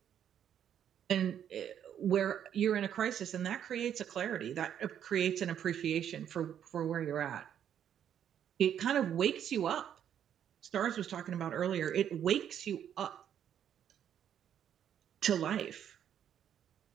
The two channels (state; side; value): quieter; left; 9.5 dB